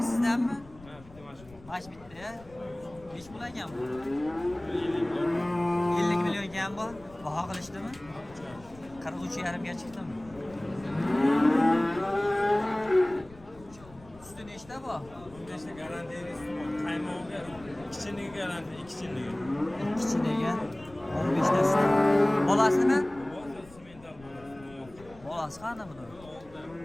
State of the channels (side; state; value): left; noise; rumble, 22 dB below the sound